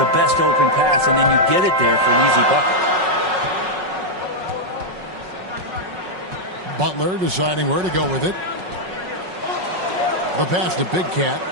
best open pass and then you get it there for an easy bucket. Butler deciding where to go with it. The pass to Big Cat.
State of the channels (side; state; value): left; late; 5.4 ms